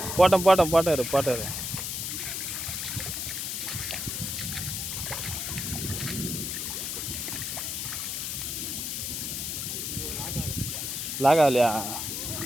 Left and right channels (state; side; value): noise; left; hiss, 3 dB below the sound